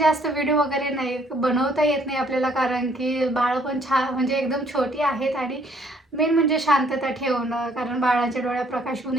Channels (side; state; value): both; normal; correlation 0.63